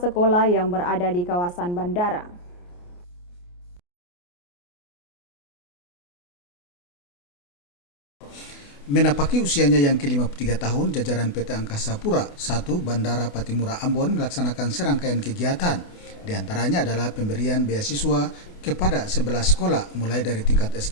sekolah yang berada di kawasan bandara. Menapaki usianya yang ke-53 tahun, jajaran PT Angkasa Pura I Bandara Patimura Ambon melaksanakan serangkaian kegiatan. Di antaranya adalah pemberian beasiswa kepada 11 sekolah mulai dari tingkat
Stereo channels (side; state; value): right; late; 28 ms